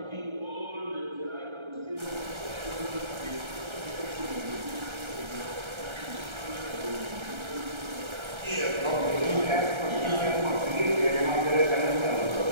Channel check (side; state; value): left; late; 1.3 ms